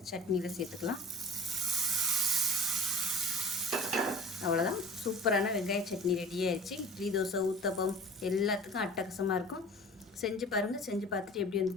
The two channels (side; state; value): both; normal; correlation 0.42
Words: சட்னியில் சேர்த்துக்கலாம். அவ்வளோதான், சூப்பரான வெங்காய சட்னி ரெடி ஆயிடுச்சு. இட்லி, தோசை, ஊத்தப்பம் எல்லாத்துக்கும் அட்டகாசமாக இருக்கும். செஞ்சு பாருங்கள். செஞ்சு பார்த்துட்டு எப்படி